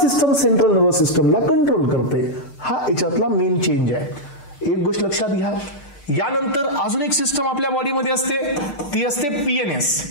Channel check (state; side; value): late; right; 6.9 ms